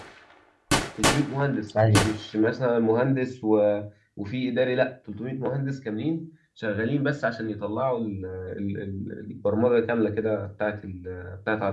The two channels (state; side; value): identical; both; correlation 1.00